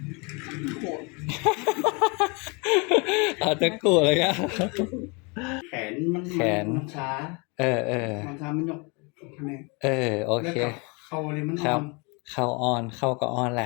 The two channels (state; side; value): quieter; right; 30.7 dB